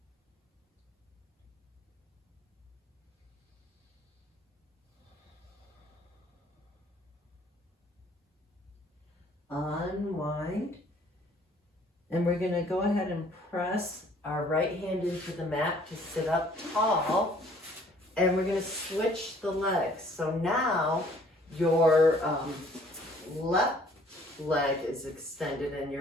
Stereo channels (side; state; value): both; normal; correlation 0.58